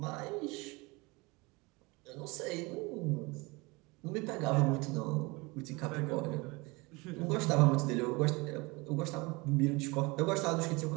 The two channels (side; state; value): left; quieter; 25.2 dB